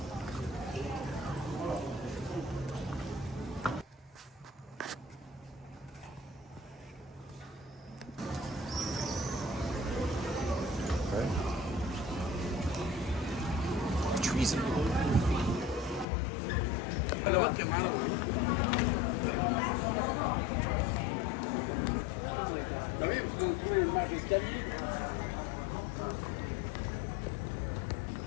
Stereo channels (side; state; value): right; drops out; at 16.1 s